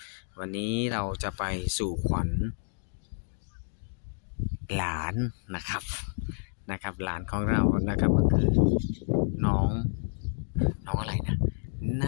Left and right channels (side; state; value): right; silent; digital silence